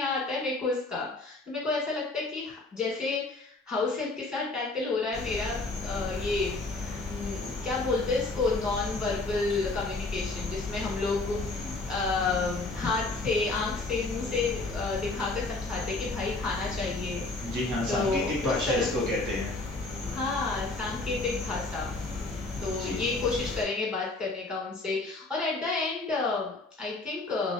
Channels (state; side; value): quieter; right; 3.2 dB